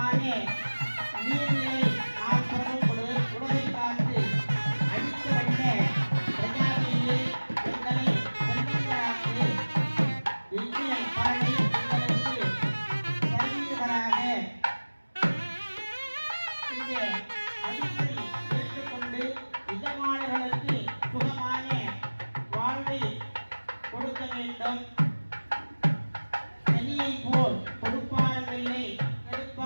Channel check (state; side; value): inverted; both; correlation -1.00